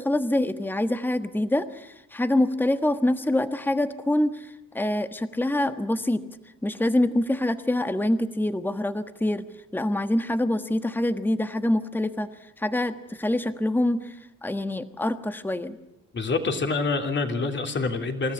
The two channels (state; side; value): normal; both; correlation 0.88